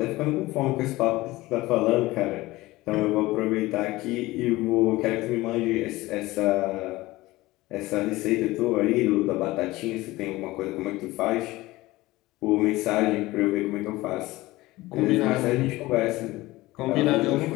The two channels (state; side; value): quieter; right; 19.1 dB